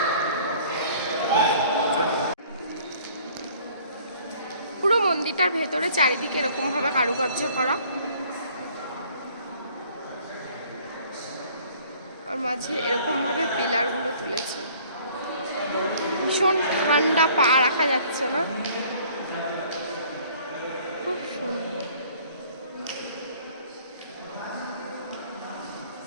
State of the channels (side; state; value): both; inverted; correlation -0.55